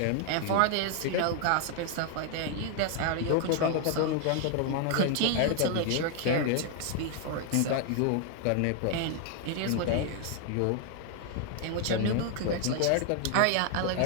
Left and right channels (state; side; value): different; both; correlation 0.00